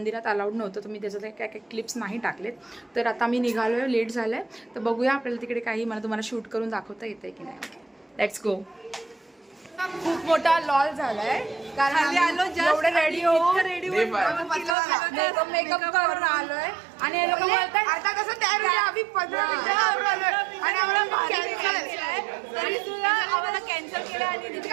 अलाउड नव्हतं, तर मी त्याच्यात काय क्लिप्स नाही टाकलेत. तर आता मी निघालो आहे, लेट झालं आहे. तर बघूया आपल्याला तिकडे काही मला तुम्हाला शूट करून दाखवता येते की नाही. Let's go. खूप मोठा लॉल झालाय कारण एवढे रेडी होऊन मेकअप करून आलोय आणि हे लोक बोलतात आता कसं तयार होईल आम्ही 15 मिनिटं आणि आम्हाला कॅन्सल केलं आणि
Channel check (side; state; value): left; drops out; at 14.8 s